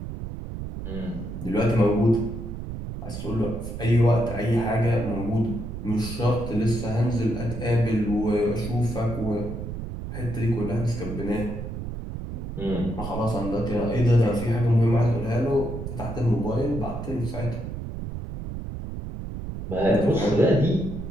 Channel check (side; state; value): right; noise; rumble, 7 dB below the sound